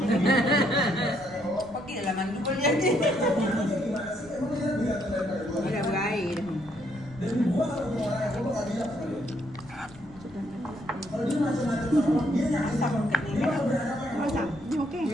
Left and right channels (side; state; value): right; noise; rumble, 22 dB below the sound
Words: Okey dalam mandi boleh jadi. Dia dah berair dah. Masak. Ni okey.